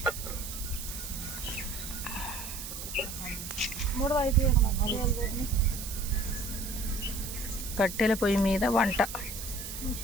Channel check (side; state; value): right; noise; hiss, 8 dB below the sound